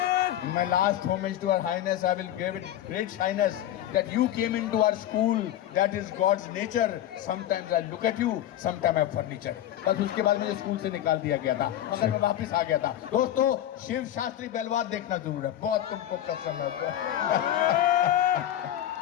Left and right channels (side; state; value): right; quieter; 12.1 dB